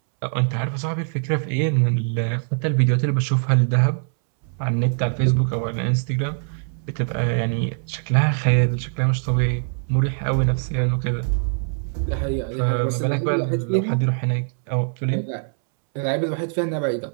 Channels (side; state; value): left; silent; 64 dB below the other